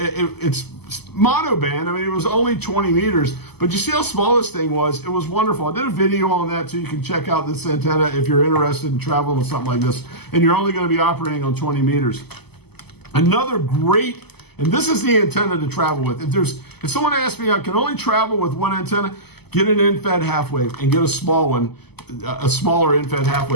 monoband. I mean, it was only 20 meters, but you see how small this thing was? It was wonderful. I did a video on that too. You can check out this antenna if you're interested in traveling with something like this, and you're only going to be operating on 20 meters. Another great, and this is the antenna to travel with. If someone asks me, I can only travel with one antenna, get an in-fed half wave and get a small one, a smaller in-fed half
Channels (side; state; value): right; late; 0.97 ms